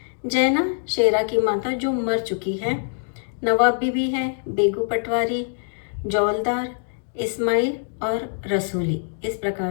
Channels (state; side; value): silent; right; 63 dB below the other